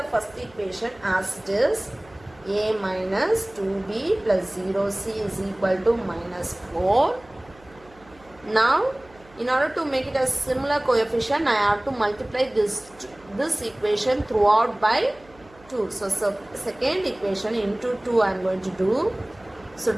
first equation as it is. A minus 2b plus 0c is equal to minus 4. Now, in order to make it a similar coefficient, I have to multiply this equation throughout by 2. So second equation into 2 I am going to do. So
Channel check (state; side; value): noise; right; hum, 26 dB below the sound